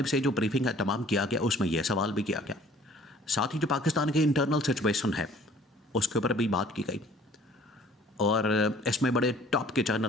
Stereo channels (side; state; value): both; normal; correlation 0.54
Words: سے جو بریفنگ کا اہتمام کیا گیا اس میں یہ سوال بھی کیا گیا، ساتھ ہی جو پاکستان کے انٹرنل سچویشن ہے اس کے اوپر بھی بات کی گئی، اور اس میں بڑے ٹاپ کے